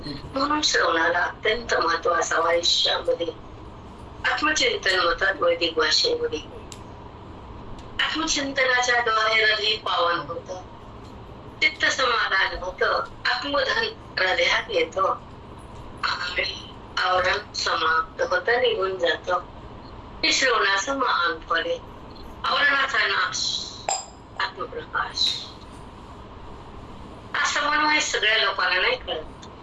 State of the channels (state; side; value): identical; both; correlation 1.00